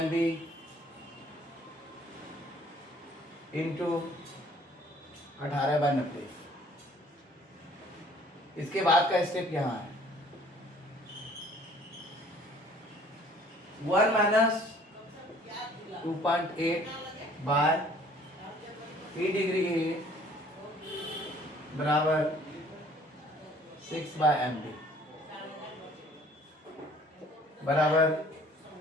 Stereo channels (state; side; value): normal; both; correlation 0.56